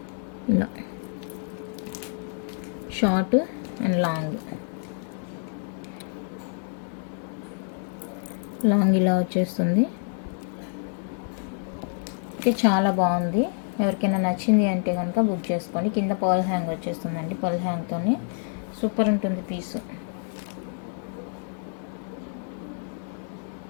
ఇలా షార్ట్ అండ్ లాంగ్ ఇలా వచ్చేస్తుంది. ఓకే, చాలా బాగుంది. ఎవరికైనా నచ్చింది అంటే కనుక బుక్ చేసుకోండి. కింద పర్ల్ హ్యాంగ్ వచ్చేస్తుందండి, పర్ల్ హ్యాంగ్తోని సూపర్ ఉంటుంది పీసు.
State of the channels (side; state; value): right; silent; 60 dB below the other